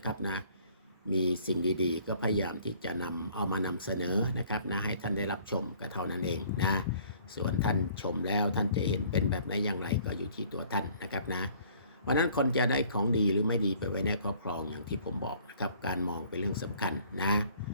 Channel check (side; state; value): both; inverted; correlation -0.56